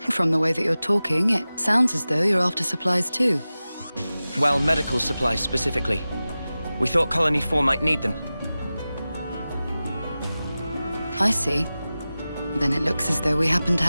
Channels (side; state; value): both; inverted; correlation -0.96